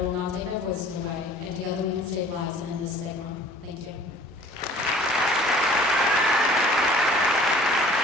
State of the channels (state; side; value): normal; both; correlation 0.50